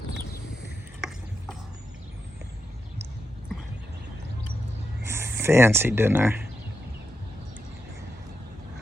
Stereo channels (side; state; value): both; normal; correlation 0.85